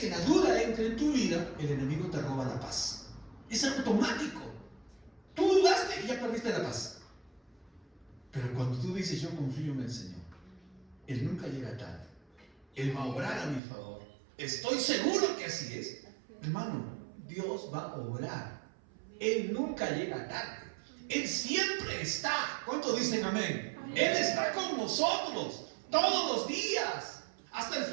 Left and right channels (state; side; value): drops out; left; at 13.6 s